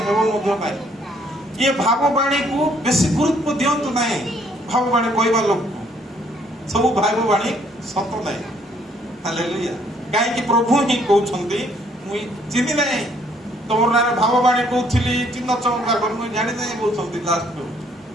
ହେବ ମଧ୍ୟ ନାହିଁ। ଇଏ ଭାବବାଣୀକୁ ବେଶୀ ଗୁରୁତ୍ୱ ଦିଅନ୍ତୁ ନାହିଁ। ଭାବବାଣୀ କହିବା ଲୋକକୁ ସବୁ ଭାବବାଣୀ ସତ ନାହିଁ। ହାଲେଲୁୟା। କାହିଁକି? ପ୍ରଭୁ ହିଁ କହୁଛନ୍ତି, ମୁଁ ଚିହ୍ନି ନାହିଁ, ତମର ନାଁରେ ଭାବବାଣୀ କହୁଥିଲି, ଚିହ୍ନ ଚମତ୍କାର ମୁଁ ଜାଣି ନାହିଁ କହୁଛନ୍ତି ଲାଷ୍ଟକୁ।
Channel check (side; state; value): both; normal; correlation 0.65